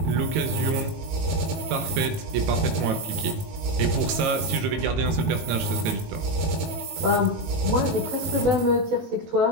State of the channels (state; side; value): late; left; 18 ms